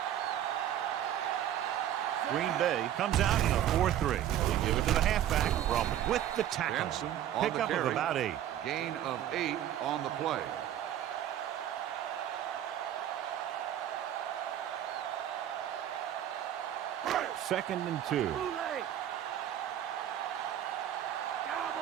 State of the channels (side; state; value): left; quieter; 11.2 dB